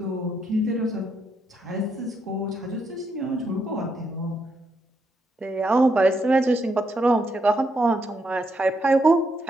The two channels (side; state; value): both; normal; correlation 0.79